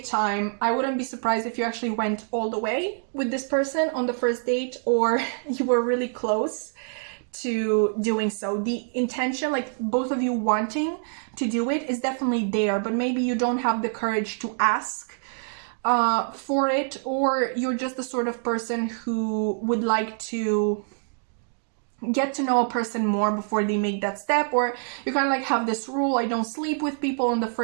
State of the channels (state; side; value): silent; left; 57 dB below the other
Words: time. I wouldn't be surprised if you actually went all the way with this person on the first date, or you were really close to doing so. The intention, like both of you wanting to do it, is definitely there, but maybe you don't have the courage to ask for it, or you're just the sort of person who would like to get to know a person more before they make that step, or you kind of like have this rule, I don't sleep with people on the